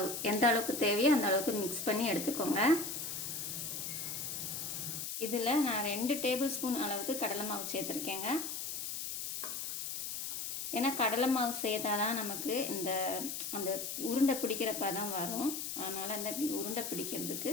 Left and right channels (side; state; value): left; noise; hiss, 4 dB below the sound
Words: எந்த அளவுக்கு தேவையோ அந்த அளவுக்கு மிக்ஸ் பண்ணி எடுத்துக்கோங்க. இதில் நான் 2 டேபிள் ஸ்பூன் அளவுக்கு கடலை மாவு சேர்த்துருக்கேங்க. ஏன்னா கடலை மாவு சேர்த்தாதான் நமக்கு அந்த உருண்டை பிடிக்கிறப்ப தான் வரும். அதனால் அந்த இப்படி உருண்டை பிடிக்கிறதுக்கு